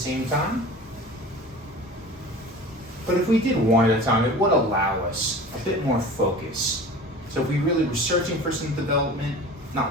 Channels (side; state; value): both; normal; correlation 0.38